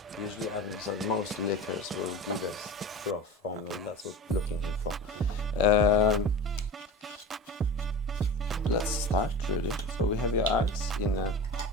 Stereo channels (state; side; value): normal; both; correlation 0.32